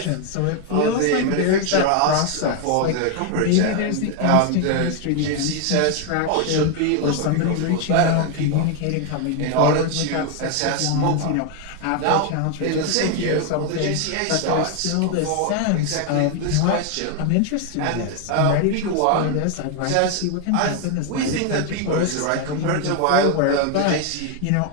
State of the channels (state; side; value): different; both; correlation 0.01